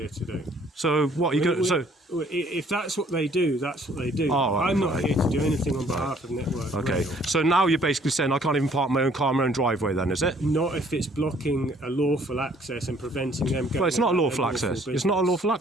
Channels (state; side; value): normal; both; correlation 0.60